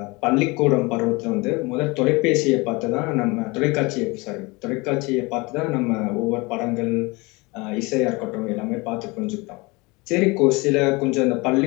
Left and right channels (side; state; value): right; quieter; 25.3 dB